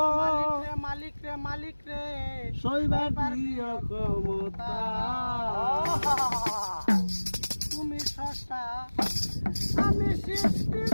মালিক রে মালিক রে সইবার দিও ক্ষমতা। তুমি স্রষ্টা, আমি সৃষ্টি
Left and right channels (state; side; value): inverted; both; correlation -1.00